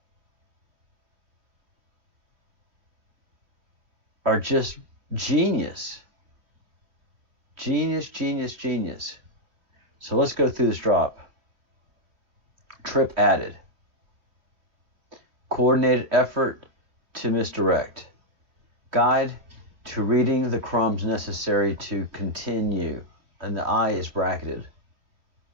are just genius. Genius, genius, genius. So let's go through this drop. Trip added. Coordinated effort to misdirect. Guide to reading the crumbs necessary to continue. And the I is bracketed.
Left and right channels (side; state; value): left; late; 2.9 ms